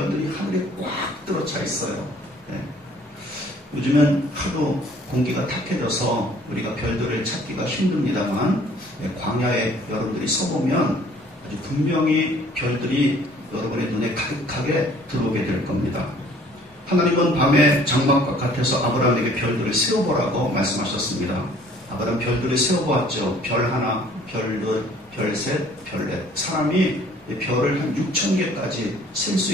하늘에 꽉 들어차 있어요. 요즘은 하도 공기가 탁해져서 우리가 별들을 찾기가 힘듭니다만 광야에 여러분들이 서보면 아주 분명히 별들이 여러분의 눈에 가득하게 들어오게 될 겁니다. 하나님은 밤에 장막 바깥에서 아브라함에게 별들을 세워보라고 말씀하셨습니다. 아브라함 별들을 세워보았죠. 별 하나, 별 둘, 별 셋, 별 넷. 사람이 별을 한 6,000개까지 셀 수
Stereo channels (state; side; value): normal; both; correlation 0.55